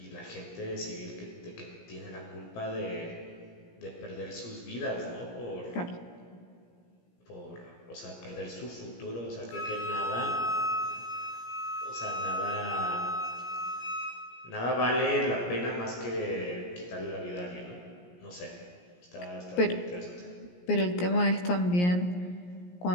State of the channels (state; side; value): late; right; 17 ms